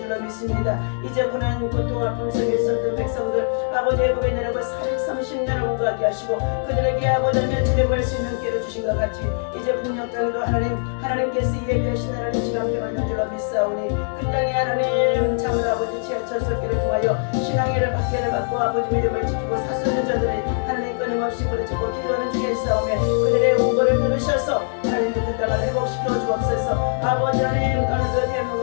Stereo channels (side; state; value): right; silent; 64 dB below the other